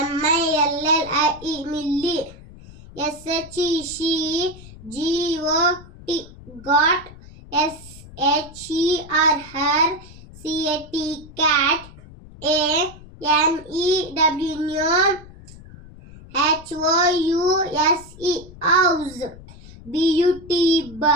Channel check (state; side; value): noise; left; rumble, 19 dB below the sound